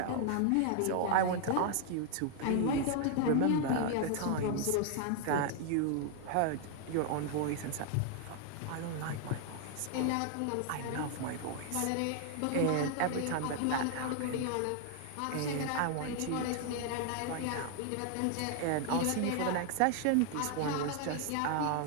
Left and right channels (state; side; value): different; both; correlation 0.00